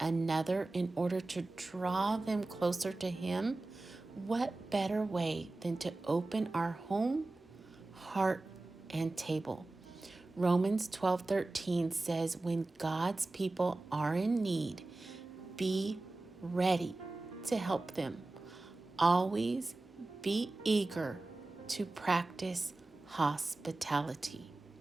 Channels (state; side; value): quieter; left; 3.0 dB